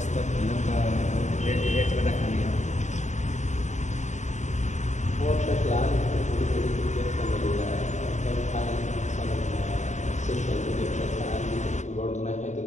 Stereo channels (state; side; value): late; right; 0.34 ms